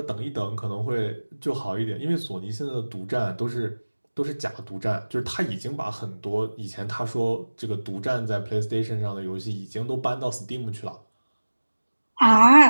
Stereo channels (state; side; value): inverted; both; correlation -1.00